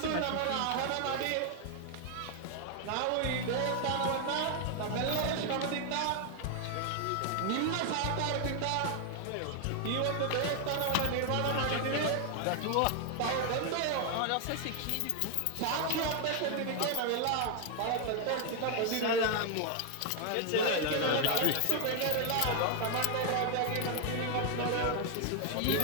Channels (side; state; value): both; different; correlation 0.00